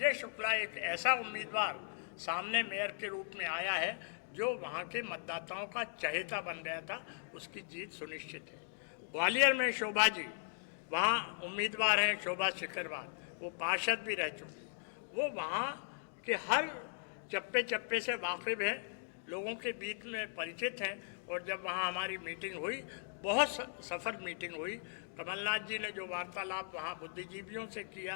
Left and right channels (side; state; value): right; silent; digital silence